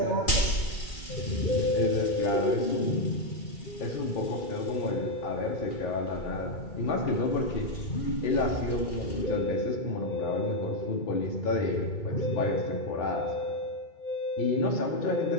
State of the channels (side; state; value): right; late; 2.3 ms